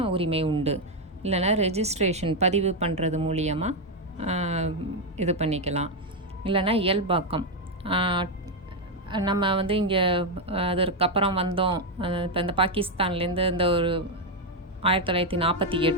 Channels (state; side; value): normal; both; correlation 0.04